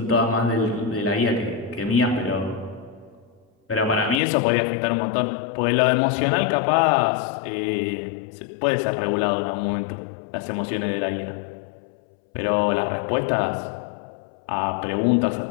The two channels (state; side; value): drops out; right; at 4.2 s